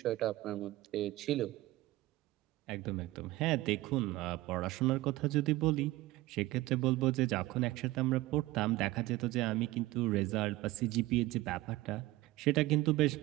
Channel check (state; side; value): quieter; left; 18.4 dB